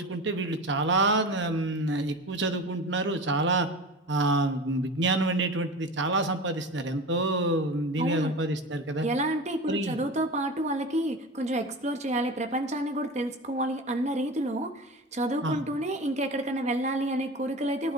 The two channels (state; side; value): normal; both; correlation 0.31